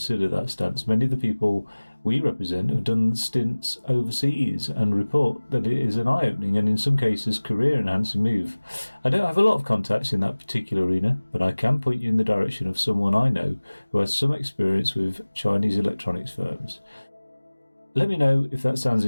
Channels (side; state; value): both; inverted; correlation -1.00